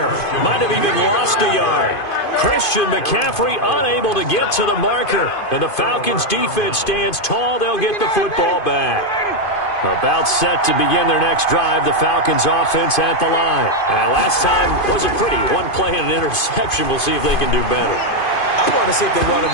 Might have even lost a yard. Christian McCaffrey unable to get to the marker. And the Falcons defense stands tall. They'll get the football back. About set to begin their next drive, the Falcons offense at the line. And last time wasn't pretty. One play and an interception. We'll see if they can do better. I want to see if they want to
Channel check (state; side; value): late; right; 2.5 ms